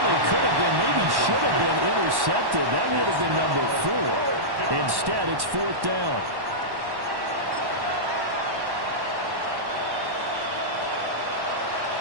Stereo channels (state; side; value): late; left; 1.1 ms